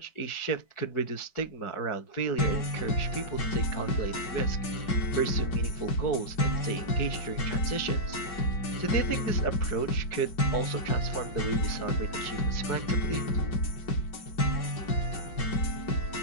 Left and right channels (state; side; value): late; right; 4.7 ms